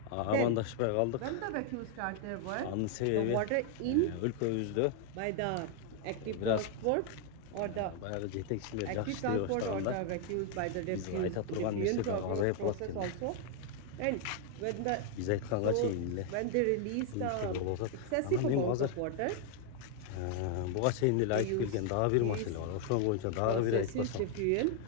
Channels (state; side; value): different; both; correlation 0.01